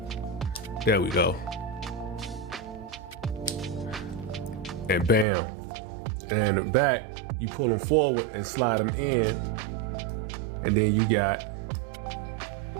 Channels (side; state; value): left; drops out; at 5.2 s